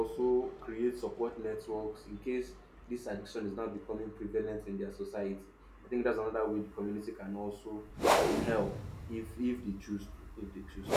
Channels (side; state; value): both; identical; correlation 1.00